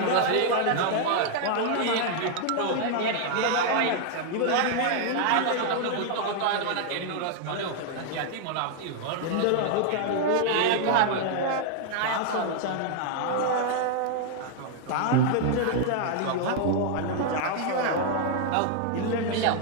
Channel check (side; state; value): both; different; correlation 0.00